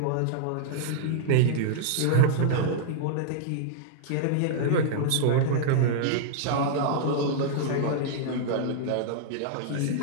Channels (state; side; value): different; both; correlation -0.01